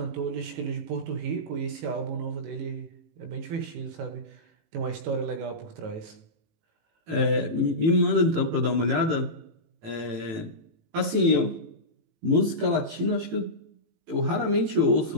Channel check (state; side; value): late; left; 18 ms